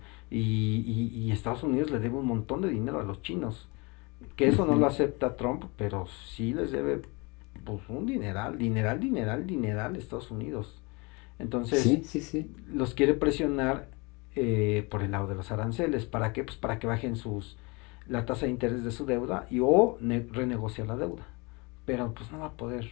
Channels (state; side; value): quieter; right; 27.9 dB